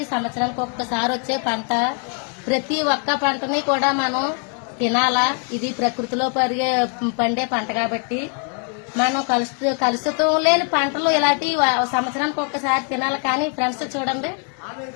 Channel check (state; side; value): quieter; right; 39.8 dB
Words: సంవత్సరానికి ఒక్కసారి వచ్చే పంట. ప్రతి ఒక్క పంటని కూడా మనం తినాలా. ఇది ప్రకృతిలో పండే పంట కాబట్టి మనం కలుషితం లేని పంటలు ఇలాంటి సంవత్సరానికి ఒక్కసారి తినాలి. కానీ ఫ్రెండ్స్ చూడండి,